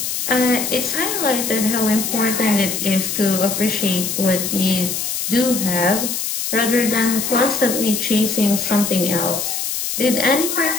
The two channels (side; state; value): left; noise; hiss, 3 dB below the sound